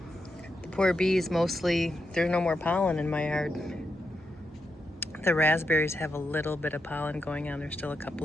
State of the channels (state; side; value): normal; both; correlation 0.85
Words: the poor bees mostly, there's no more pollen in my yard. The raspberries have a little bit of pollen going on. There's still a